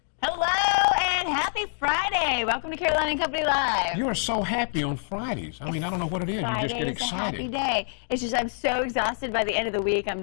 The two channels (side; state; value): right; silent; digital silence